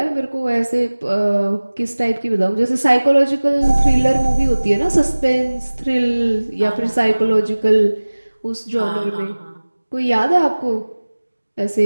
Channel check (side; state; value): both; inverted; correlation -1.00